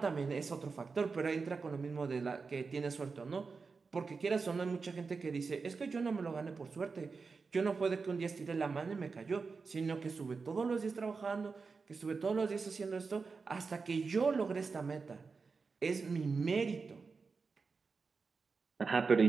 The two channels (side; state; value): left; quieter; 4.7 dB